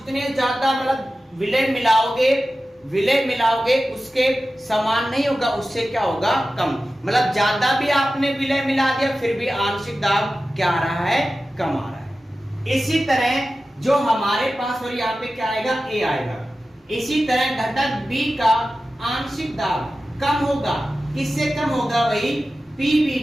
ज्यादा मतलब विलय मिलाओगे उसके समान नहीं होगा, उससे क्या होगा? कम। मतलब ज्यादा भी आपने विलय मिला दिया फिर भी आंशिक दाब क्या आ रहा है? कम आ रहा है। इसी तरह जो हमारे पास और यहाँ पे क्या आएगा? A आएगा। इसी तरह घटक B का आंशिक दाब कम होगा। किससे कम होगा भाई?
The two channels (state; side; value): normal; both; correlation 0.94